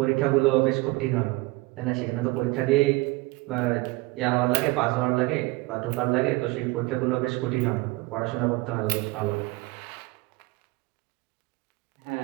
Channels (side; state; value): left; quieter; 22.3 dB